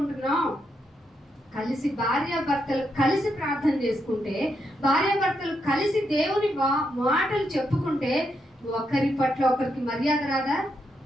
కలిసి భార్యాభర్తలు కలిసి ప్రార్థన చేసుకుంటే, భార్యాభర్తలు కలిసి దేవుని మాటలు చెప్పుకుంటే ఒకరి పట్ల ఒకరికి మర్యాద రాదా?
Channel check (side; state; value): both; normal; correlation 0.81